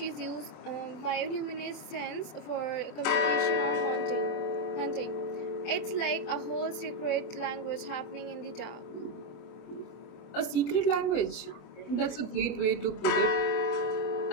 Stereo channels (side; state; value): right; late; 24 ms